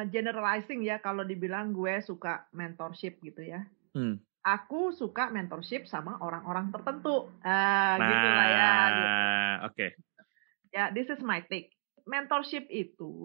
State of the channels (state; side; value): silent; left; digital silence